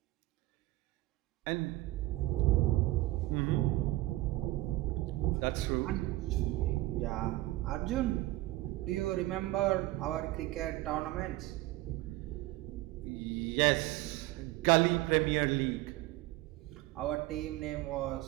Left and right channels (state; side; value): quieter; left; 17.7 dB